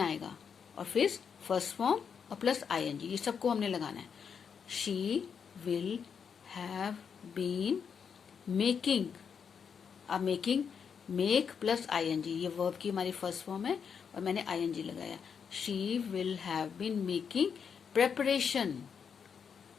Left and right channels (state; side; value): quieter; right; 6.7 dB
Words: और फिर फर्स्ट फॉर्म और प्लस आईएनजी, ये सबको हमने लगाना है। She will have been making, अब मेकिंग, मेक प्लस आईएनजी, ये वर्ब की हमारी फर्स्ट फॉर्म है और मैंने आईएनजी लगाया। She will have been making preparation,